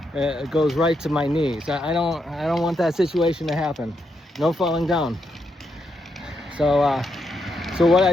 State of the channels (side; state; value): both; normal; correlation 0.81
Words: goes right to my knees. I don't want that situation to happen. No falling down. So what